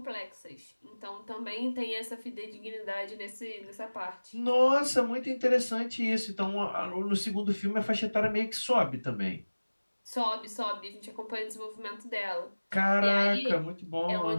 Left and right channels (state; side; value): inverted; both; correlation -1.00